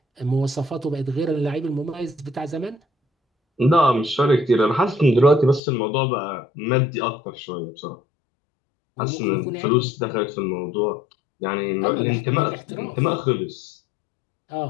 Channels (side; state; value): right; drops out; at 5.6 s